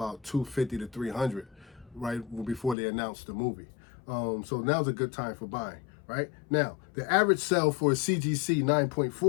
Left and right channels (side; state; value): right; drops out; at 2.8 s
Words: $250 to $300, right, before they announced the movie. So now's a good time for buying, right? Now, the average sale for a CGC